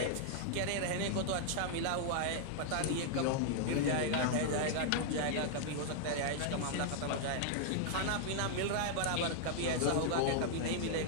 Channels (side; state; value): both; different; correlation -0.01